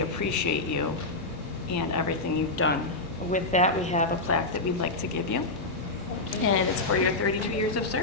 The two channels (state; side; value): quieter; right; 3.0 dB